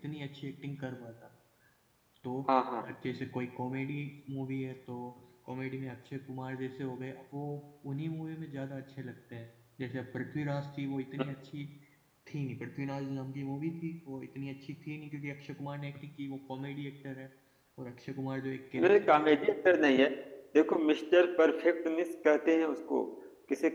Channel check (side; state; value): both; identical; correlation 1.00